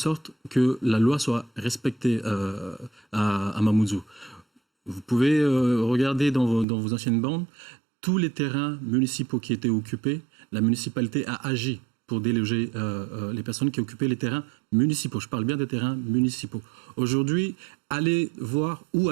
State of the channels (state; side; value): drops out; left; at 6.7 s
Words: que la loi soit respectée à Mamoudzou. Vous pouvez regarder dans vos anciennes bandes, tous les terrains municipaux qui étaient occupés, la municipalité a agi pour déloger les personnes qui occupaient les terrains municipaux. Je parle bien des terrains municipaux. Aujourd'hui, allez voir où